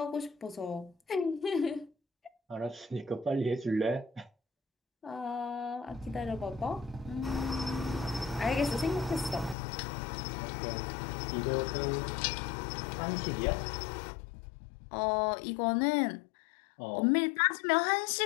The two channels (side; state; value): right; drops out; at 9.6 s